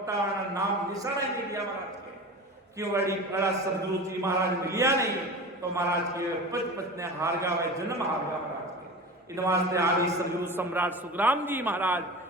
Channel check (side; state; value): both; normal; correlation 0.32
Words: नाम निशाना ही नहीं दिया महाराज के, क्यों? बड़ा सदगुरु जी महाराज मिलिया नहीं तो महाराज के पच ने हार गा वे जन्म हार गा महाराज के। इन वास्ते आदि सदगुरु सम्राट सुखराम जी महाराज